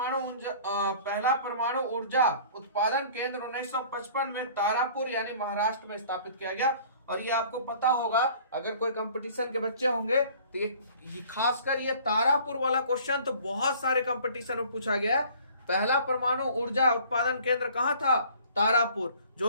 परमाणु ऊर्जा उत्पादन केंद्र 1955 में तारापुर यानी महाराष्ट्र में स्थापित किया गया। और ये आपको पता होगा, अगर कोई कंपटीशन के बच्चे होंगे तो ये खासकर ये तारापुर वाला क्वेश्चन तो बहुत सारे कंपटीशन में पूछा गया है। पहला परमाणु ऊर्जा उत्पादन केंद्र कहाँ था? तारापुर,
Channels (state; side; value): inverted; both; correlation -0.50